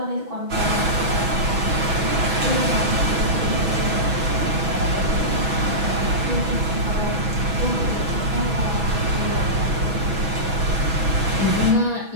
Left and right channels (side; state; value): left; late; 6.1 ms